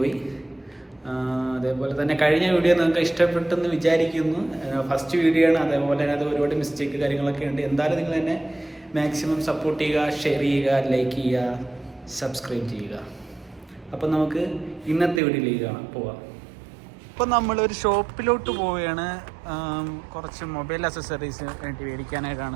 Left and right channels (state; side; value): drops out; left; at 15.2 s